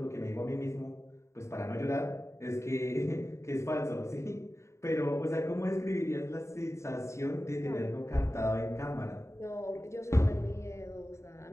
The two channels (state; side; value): late; right; 0.14 ms